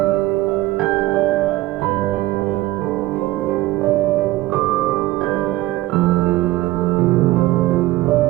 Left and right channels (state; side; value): quieter; left; 17.4 dB